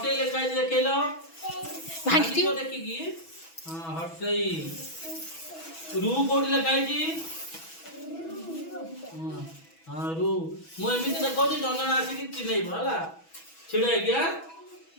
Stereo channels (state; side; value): late; right; 6.1 ms